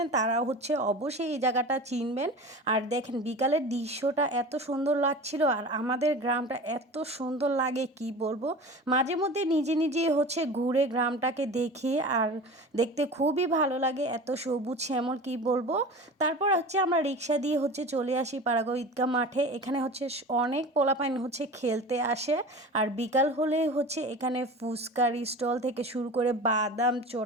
তারা হচ্ছে অবশ্যই এই জায়গাটা চিনবেন। আর দেখেন বিকালের দৃশ্যটা এত সুন্দর লাগছিল আর আমাদের গ্রামটা এত সুন্দর লাগে কি বলবো। মাঝে মধ্যে নিজে নিজে হচ্ছে ঘুরে গ্রামটাকে দেখি আর দেখতে খুবই ভালো লাগে, এত সবুজ শ্যামল কি বলবো। তারপর হচ্ছে আমরা রিক্সা দিয়ে হচ্ছে চলে আসি পাড়াগাঁও ঈদগাহ মাঠে। এখানে হচ্ছে অনেক পোলাপাইন হচ্ছে খেলতে আসে আর বিকাল হলে হচ্ছে এখানে ফুচকার স্টল থেকে শুরু করে বাদাম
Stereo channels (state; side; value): normal; both; correlation 0.35